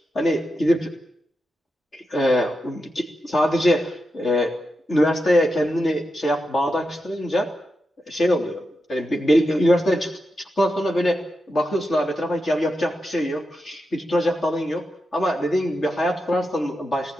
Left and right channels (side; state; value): both; normal; correlation 0.88